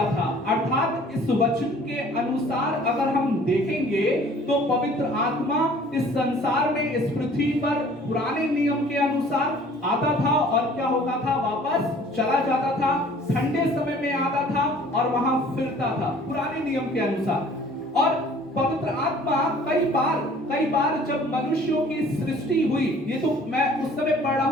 था। अर्थात इस वचन के अनुसार अगर हम देखेंगे तो पवित्र आत्मा इस संसार में, इस पृथ्वी पर पुराने नियम के अनुसार आता था और क्या होता था? वापस चला जाता था। ठंडे समय में आता था और वहां फिरता था पुराने नियम के अनुसार। और पवित्र आत्मा कई बार जब मनुष्यों की सृष्टि हुई, ये तो मैं उस समय पढ़ रहा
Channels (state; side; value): normal; both; correlation 0.52